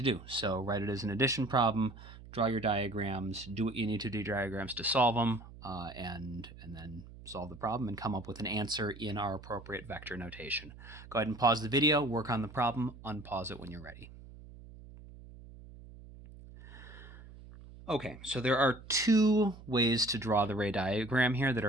do. So write it as an addition problem, draw your diagrams, do what you need to do diagrams to solve them, and then solve the problem and come up with an answer in our appropriate vector notation. Go ahead and pause the video, work on the problem, unpause it when you're ready. Okay, so there are two ways to draw the ray diagram here that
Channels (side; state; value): right; noise; hum, 17 dB below the sound